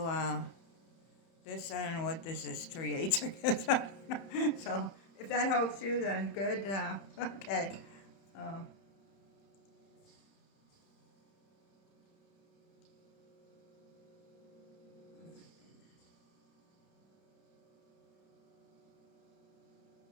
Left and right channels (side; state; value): right; late; 30 ms